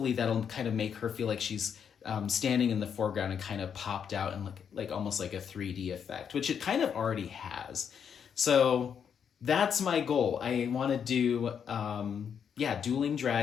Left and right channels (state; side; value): quieter; right; 7.6 dB